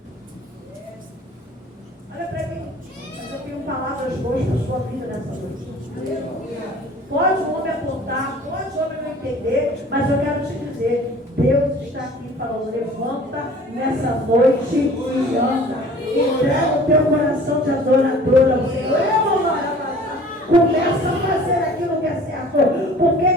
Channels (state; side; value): normal; both; correlation 0.48